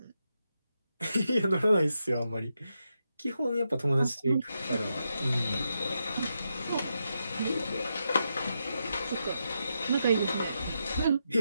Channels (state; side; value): inverted; both; correlation -0.85